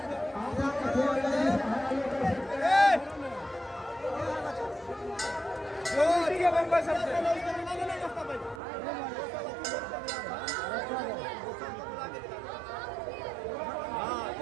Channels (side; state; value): left; drops out; at 8.6 s